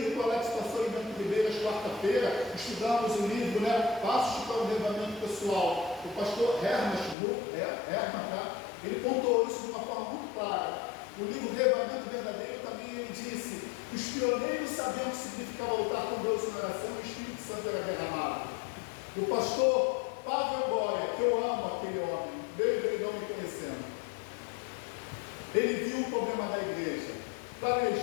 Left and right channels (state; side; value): drops out; right; at 7.2 s